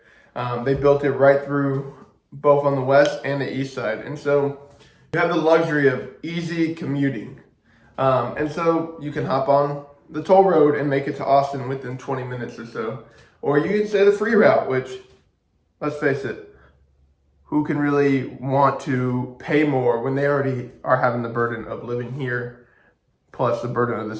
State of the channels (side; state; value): both; identical; correlation 1.00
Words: They built it right through both on the west and the east side. And so you have the luxury of easy commuting. And so you can hop on the toll road and make it to Austin within 20 minutes or so. Or you can say the free route, which, let's face it, who can really want to pay more when they already are having the burden of living here, plus the burden of